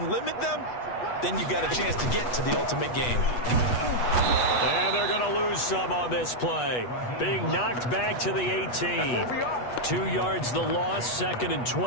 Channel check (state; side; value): late; right; 8.2 ms